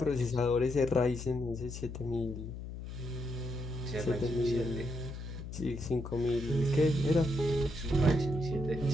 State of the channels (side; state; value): left; noise; hum, 8 dB below the sound